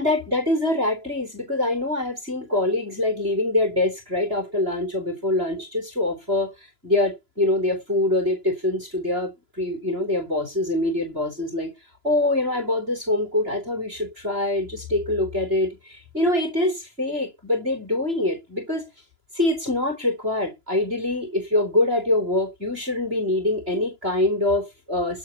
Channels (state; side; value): late; left; 2.9 ms